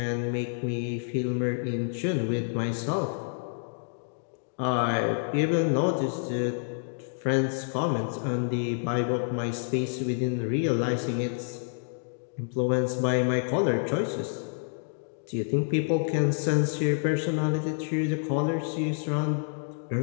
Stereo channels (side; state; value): right; silent; digital silence